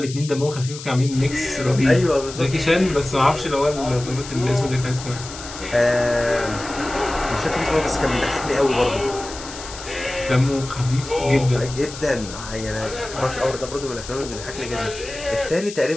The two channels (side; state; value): left; noise; hiss, 12 dB below the sound